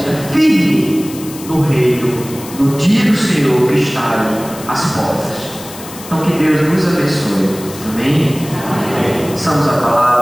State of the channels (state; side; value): noise; left; hiss, 15 dB below the sound